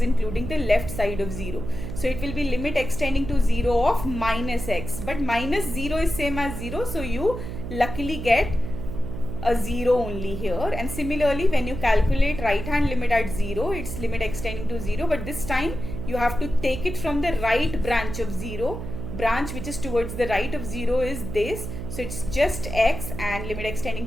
including the left side of 0. So it will be limit x tending to 0 of minus x, but minus 0 is same as 0, so you luckily get a 0 only here. And similarly when you calculate right hand limit at 0, it's limit x tending to 0, but this time you have to take it from the right branch of 0. Branch which is towards the right of 0 is this, so it's just x, and limit x tending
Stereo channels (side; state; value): right; noise; hum, 7 dB below the sound